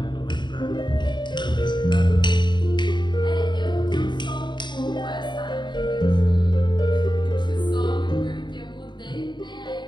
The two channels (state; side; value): late; right; 0.22 ms